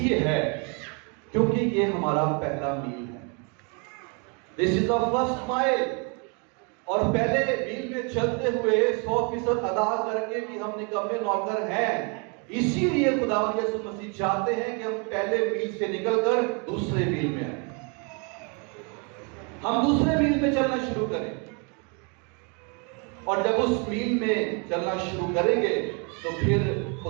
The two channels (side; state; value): left; quieter; 35.2 dB